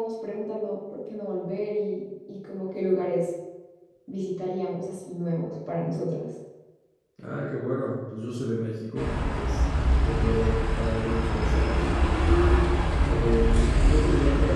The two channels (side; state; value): both; identical; correlation 1.00